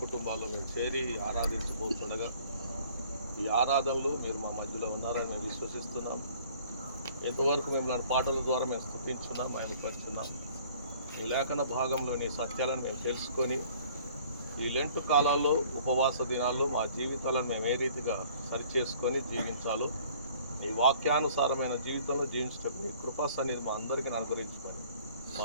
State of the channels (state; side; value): inverted; both; correlation -0.54